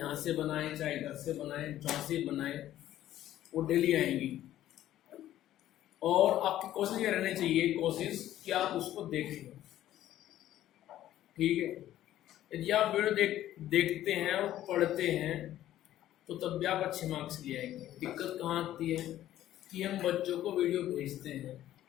से बनाएं, चाहे घर से बनाएं, जहाँ से बनाएं, वो डेली आएंगी। और आपकी कोशिश ये रहनी चाहिए, कोशिश कि आप उसको देखें। ठीक है, यदि आप वीडियो देखते हैं और पढ़ते हैं तो तब भी आप अच्छे मार्क्स ले आएंगे। दिक्कत कहाँ आती है कि हम बच्चों को वीडियो भेजते हैं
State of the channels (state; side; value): quieter; right; 13.0 dB